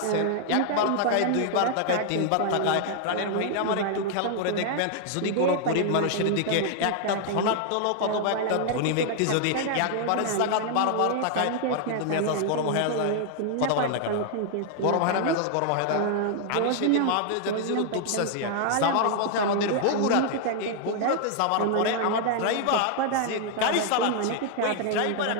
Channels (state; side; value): different; both; correlation 0.00